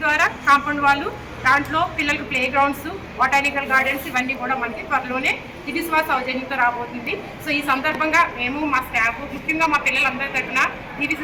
ద్వారా కాంపౌండ్ వాళ్ళు, దాంట్లో పిల్లలకు ప్లే గ్రౌండ్స్, బొటానికల్ గార్డెన్స్ ఇవన్నీ కూడా మనకి త్వరలోనే దివిశ్వాస సౌజన్యంతో రాబోతుంది. సో ఈ సందర్భంగా మేము మా స్టాఫ్ ముఖ్యంగా మా పిల్లలందరి తరఫున DVC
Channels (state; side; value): identical; both; correlation 1.00